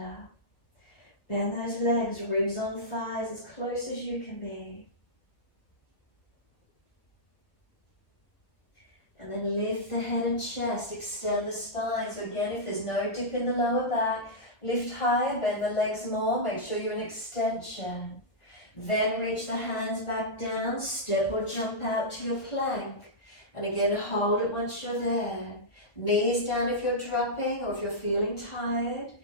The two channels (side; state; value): right; late; 1.1 ms